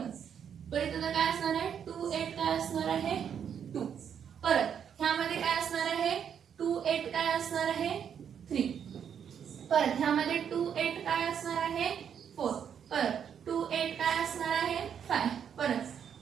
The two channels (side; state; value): left; quieter; 8.1 dB